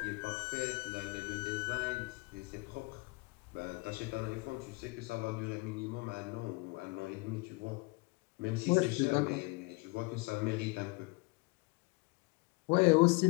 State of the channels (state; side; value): quieter; right; 26.9 dB